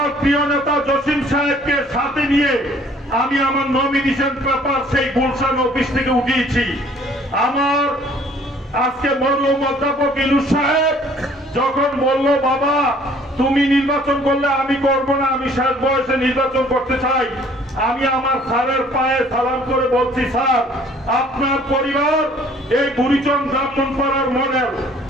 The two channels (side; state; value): both; normal; correlation 0.57